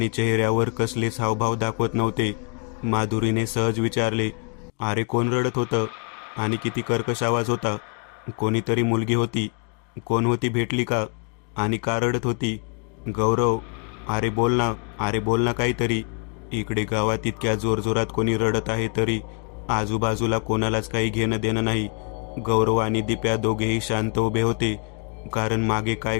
चेहऱ्यावर कसलेच हावभाव दाखवत नव्हते. माधुरीने सहज विचारले, अरे कोण रडत होतं आणि किती कर्कश आवाज होता? कोणीतरी मुलगी होती? कोण होती, भेटली का? आणि का रडत होती? गौरव, अरे बोल ना, अरे बोल ना काहीतरी. इकडे गावात इतक्या जोरजोरात कोणी रडत आहे तरी आजूबाजूला कोणालाच काही घेणं देणं नाही. गौरव आणि दिप्या दोघेही शांत उभे होते, कारण मागे काय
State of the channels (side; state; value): right; quieter; 37.1 dB